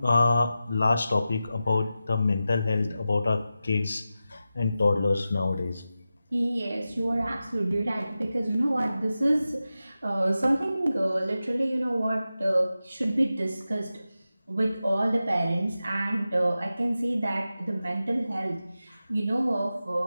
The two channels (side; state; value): both; inverted; correlation -0.93